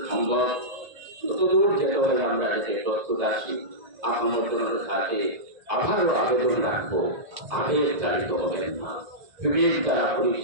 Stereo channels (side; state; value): left; late; 1.7 ms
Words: সম্ভব ততদূর যেতে হলে আমরা যাতে প্রস্তুত আছি। আপনার সাথে আবারও আবেদন রাখবো, আবেগ চালিত হবেন না, বিবেক দ্বারা